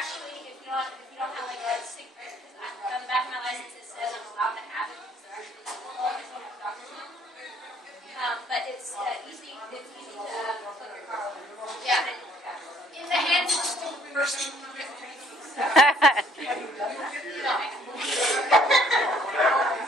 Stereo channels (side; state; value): both; normal; correlation 0.61